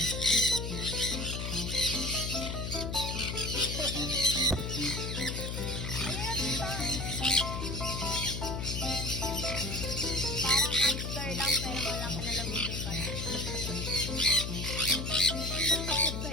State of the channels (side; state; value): left; noise; hum, 4 dB below the sound